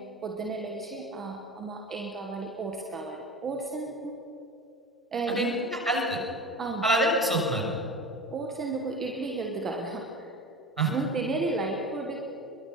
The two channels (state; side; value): normal; both; correlation 0.32